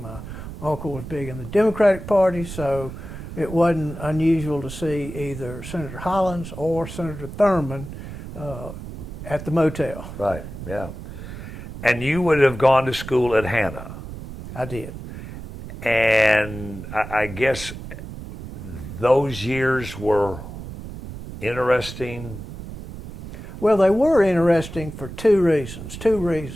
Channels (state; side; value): noise; right; rumble, 11 dB below the sound